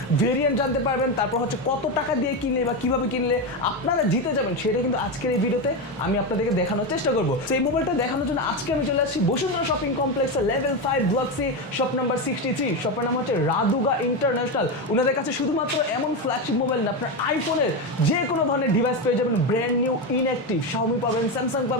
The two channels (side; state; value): both; normal; correlation 0.13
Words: ভেরিয়েন্ট জানতে পারবেন, তারপর হচ্ছে কত টাকা দিয়ে কিনলে বা কিভাবে কিনলে আপনারা জিতে যাবেন সেটা কিন্তু আজকের এই ভিডিওতে আমি আপনাদেরকে দেখানোর চেষ্টা করবো। সেই মোবাইলটা দেখানোর জন্য আজকে আমি চলে আসছি বসুন্ধরা শপিং কমপ্লেক্সের level 5 block C, shop number 63। শপের নাম হচ্ছে রাদুগা ইন্টারন্যাশনাল। ওনাদের কাছে শুধুমাত্র এমন ফ্ল্যাগশিপ মোবাইল না, আপনার আইফোনের যে কোনো ধরনের ডিভাইস পেয়ে যাবেন, ব্র্যান্ড নিউ ইনঅ্যাক্টিভ xiaomi পাবেন, স্যামসাং